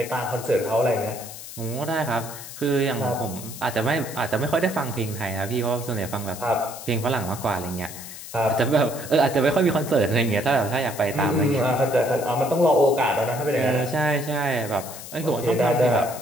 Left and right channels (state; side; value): noise; left; hiss, 12 dB below the sound